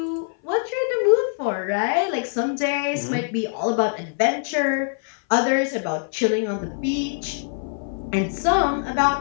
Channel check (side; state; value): right; silent; 58 dB below the other